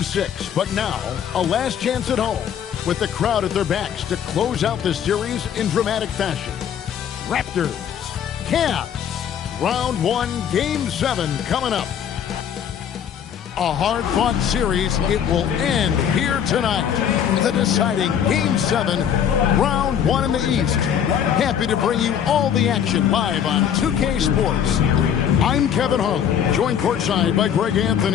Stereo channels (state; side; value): quieter; right; 8.7 dB